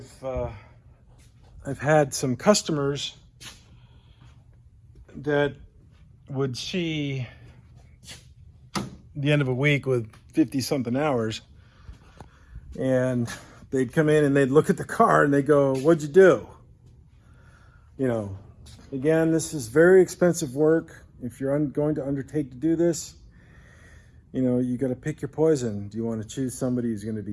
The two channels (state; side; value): identical; both; correlation 1.00